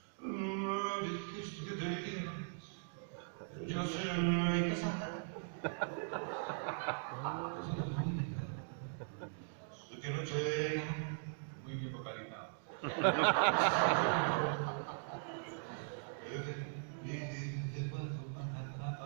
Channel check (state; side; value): silent; left; digital silence